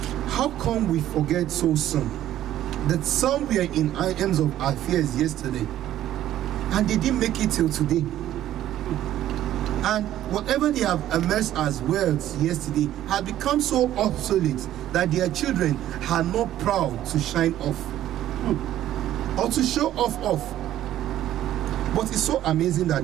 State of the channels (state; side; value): quieter; left; 12.7 dB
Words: how come we forget so soon that some were in items of affairs yesterday and they didn't make it till today? And whatever they have amassed as wealth yesterday had become so obsolete that their children are not proud to shine off or to show off. But it's so amazing